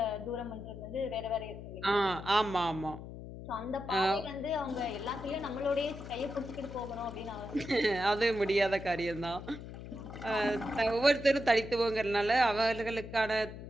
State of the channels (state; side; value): noise; left; hum, 11 dB below the sound